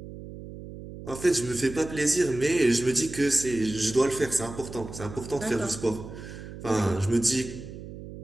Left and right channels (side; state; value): right; noise; hum, 12 dB below the sound